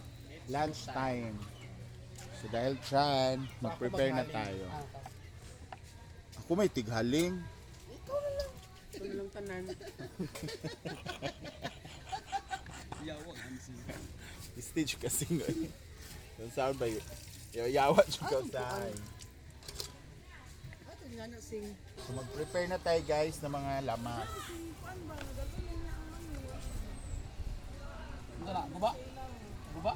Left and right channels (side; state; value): both; identical; correlation 1.00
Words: lunch time. So dahil dyan, mag-prepare na tayo. Ako may tighaling. Ikaw na lang. Ito na lang tanan. Yawag, Hansi. Stage kasi ngayon. Yung sound ba yun? Yawa siya tayo. Ato nga na sing. So mag-prepare na tayo guys ng mga lamas. Tara, guba. Guba.